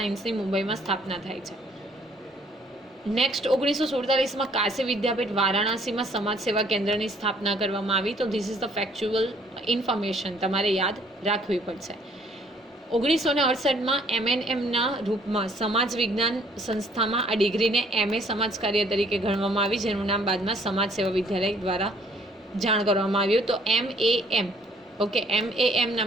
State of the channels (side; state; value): both; normal; correlation 0.62